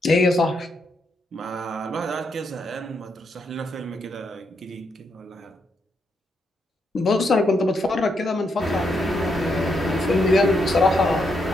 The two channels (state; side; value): normal; both; correlation 0.79